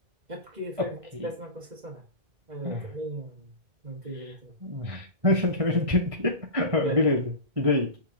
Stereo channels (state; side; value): late; left; 1.6 ms